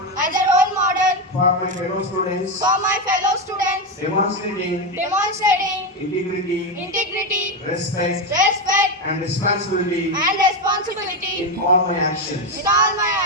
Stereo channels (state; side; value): normal; both; correlation 0.10